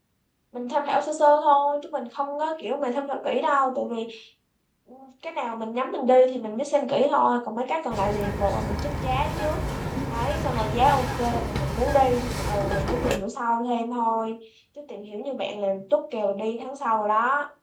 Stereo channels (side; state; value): both; identical; correlation 1.00